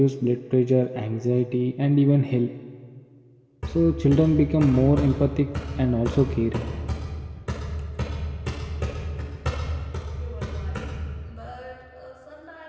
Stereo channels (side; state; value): both; identical; correlation 1.00